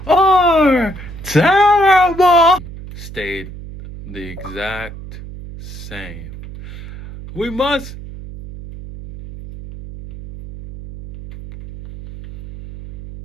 are terrible. Stayed the exact same. We must.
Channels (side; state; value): right; noise; hum, 13 dB below the sound